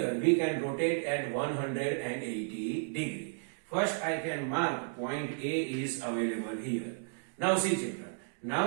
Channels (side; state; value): left; silent; digital silence